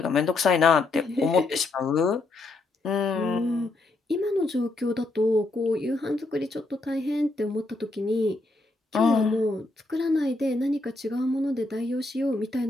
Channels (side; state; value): right; quieter; 3.1 dB